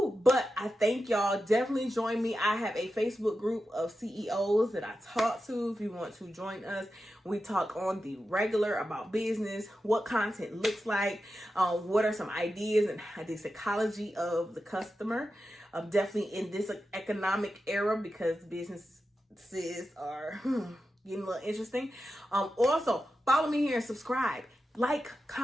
I thank y'all. Definitely join me. I have a Facebook group of CEOs that I talk to. If you want to join us, we talk on the regular about business, what content looks like, what are some ideas and the psychology of the customer. Definitely in this economic era, because businesses are getting a little interesting. Also, follow me here and subscribe. Like,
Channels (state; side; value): normal; both; correlation 0.91